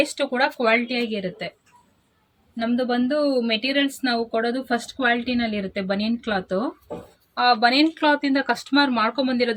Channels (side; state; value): both; identical; correlation 1.00